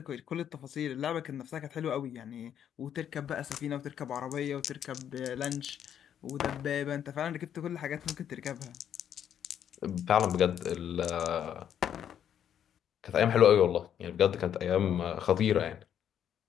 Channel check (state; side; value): quieter; right; 9.4 dB